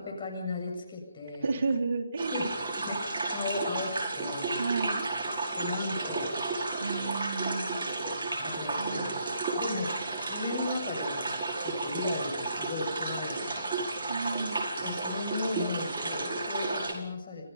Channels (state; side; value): inverted; both; correlation -0.73